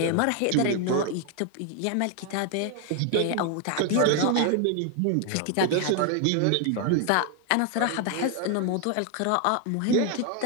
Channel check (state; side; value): different; both; correlation 0.00